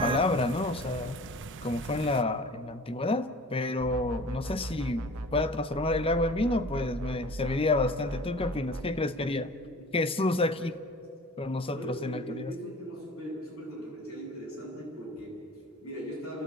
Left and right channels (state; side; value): normal; both; correlation 0.43